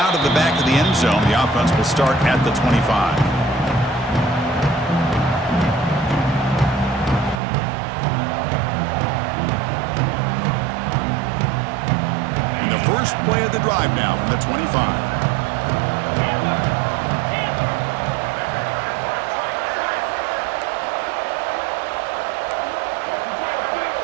of the back of the end zone. The offense will start at the 25. And the first play of the drive now from the 25.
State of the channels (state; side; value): drops out; left; at 7.4 s